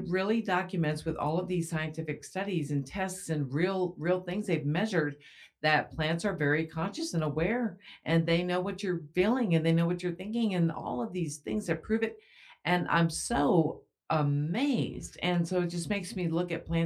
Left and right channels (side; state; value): both; identical; correlation 1.00